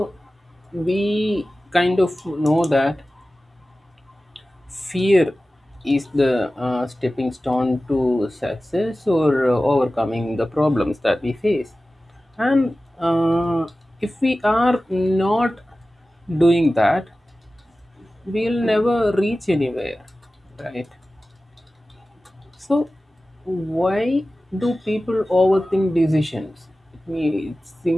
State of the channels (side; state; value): both; normal; correlation 0.96